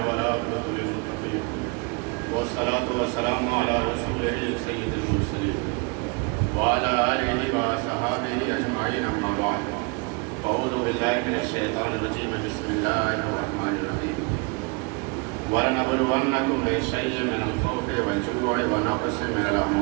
والعاقبة للمتقين والصلاة والسلام على رسوله سيد المرسلين وعلى آله وصحبه أجمعين أما بعد أعوذ بالله من الشيطان الرجيم بسم الله الرحمن الرحيم ولنبلونكم بشيء من الخوف والجوع ونقص من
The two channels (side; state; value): left; quieter; 30.2 dB